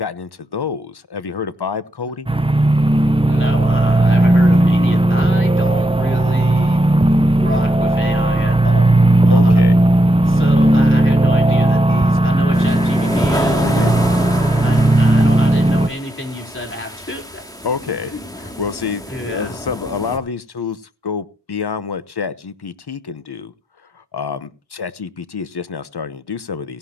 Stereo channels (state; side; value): normal; both; correlation 0.83